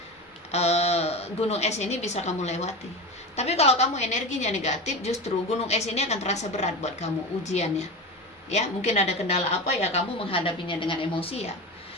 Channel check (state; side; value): normal; both; correlation 0.25